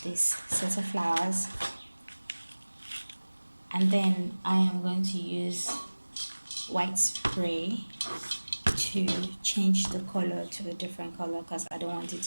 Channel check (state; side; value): inverted; both; correlation -1.00